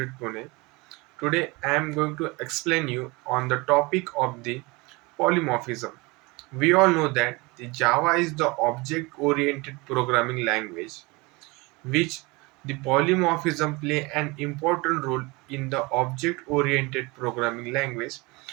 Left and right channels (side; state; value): left; quieter; 25.1 dB